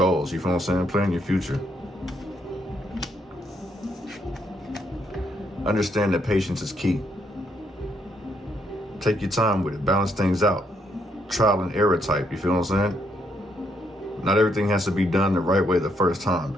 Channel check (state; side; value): normal; both; correlation 0.74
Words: you feel what I'm saying? Plan your future. Understand that patience is key. Take your time with it. Balance things out. Trial and error type, you feel what I'm saying? Not everything has to be done the right way the first time.